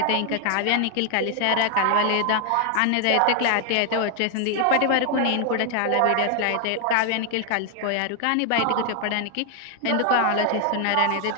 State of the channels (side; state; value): both; different; correlation 0.00